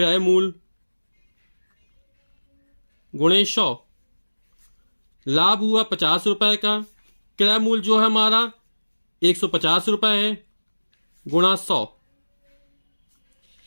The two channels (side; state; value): both; inverted; correlation -1.00